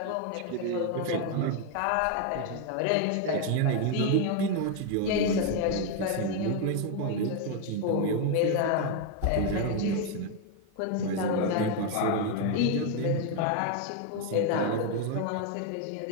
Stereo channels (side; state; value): both; different; correlation 0.01